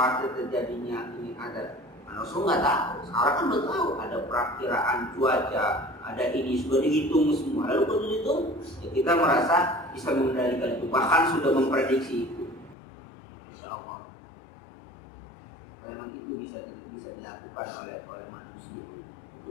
terjadinya ini ada. Rasul nggak tahu. Sekarang kan udah tahu ada perakiraan cuaca, ada ini sudah dihitung semua. Lalu kalau dihitung, ya kita merasa bisa mengendalikan itu, bahkan sudah memprediksi itu. Insya Allah. Memang itu bisa dilakukan oleh manusia.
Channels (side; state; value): right; drops out; at 12.8 s